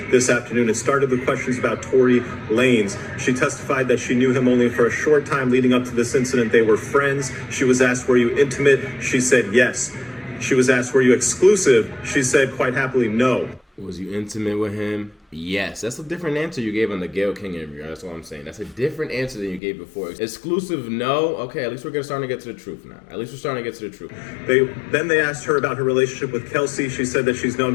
this afternoon. It started with questions about Tory Lanez. She testified that she knew him only for a short time leading up to this incident. They were friends. She was asked, were you intimate? She said yes. She was asked, were you exclusive? She said quite happily no. Was you intimate with him? Yes. That's a different answer you gave on the Gayle King interview. That's what I'm saying. That's a different answer than you gave before. Exclusive, no. Okay, at least we're starting to get to the truth now. At least we're starting to get to the truth. Then they asked her about her relationship with Kelsey. She said that she's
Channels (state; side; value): drops out; right; at 19.6 s